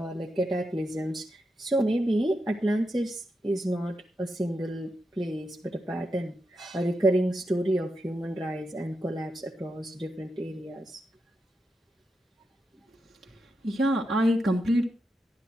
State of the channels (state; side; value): normal; both; correlation 0.86